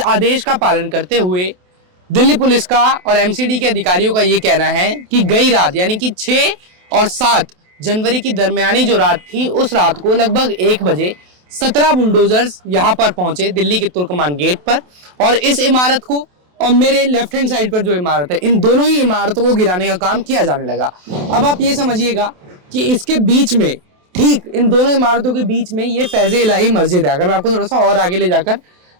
आदेश का पालन करते हुए दिल्ली पुलिस का और एमसीडी के अधिकारियों का ये कहना है कि गई रात यानी कि 6 और 7 जनवरी की दरमियानी जो रात थी, उस रात को लगभग 1 बजे 17 बुलडोजर्स यहाँ पर पहुंचे दिल्ली के तुर्कमान गेट पर, और इस इमारत को और मेरे लेफ्ट हैंड साइड पर जो इमारत है, इन दोनों ही इमारतों को गिराने का काम किया जाने लगा। अब आप ये समझिएगा कि इसके बीच में, ठीक इन दोनों इमारतों के बीच में, ये फैज़-ए-इलाही मस्जिद है। अगर मैं आपको थोड़ा सा और आगे ले जाकर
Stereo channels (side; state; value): left; late; 28 ms